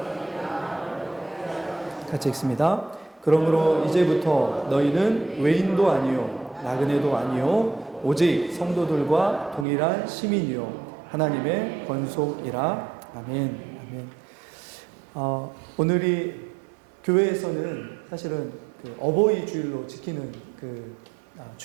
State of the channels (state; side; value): drops out; left; at 9.7 s